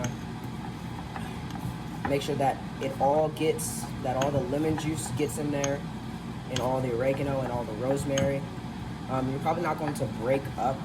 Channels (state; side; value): identical; both; correlation 1.00